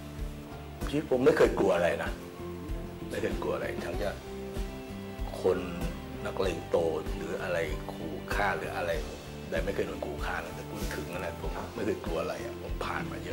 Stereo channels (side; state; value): both; identical; correlation 1.00